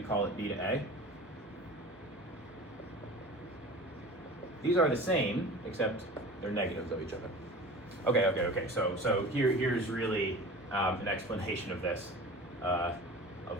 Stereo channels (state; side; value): normal; both; correlation 0.37